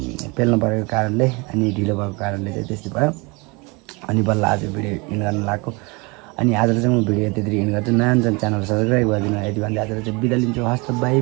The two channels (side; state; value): left; quieter; 27.6 dB